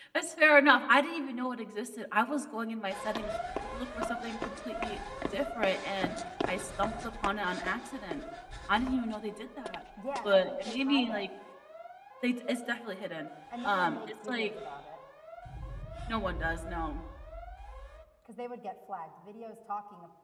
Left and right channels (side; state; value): both; identical; correlation 1.00